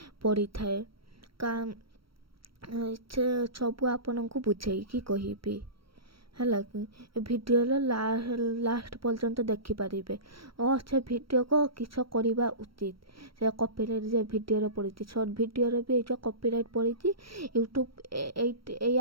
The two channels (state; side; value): late; left; 0.75 ms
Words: पड़ी थाए का सब आपण को बुझेगी कहबी है कि भिडियो लास्ट पर्यंत देखिपारे और से भिडियो को किस करवा उचित से कॉपीराइट जे भिडियो पड़ी सर्ट भिडियो भी ये कॉपीराइट पड़ी यूट्यूब ये